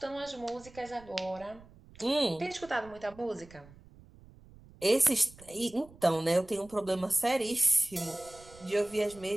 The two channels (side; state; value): right; noise; rumble, 22 dB below the sound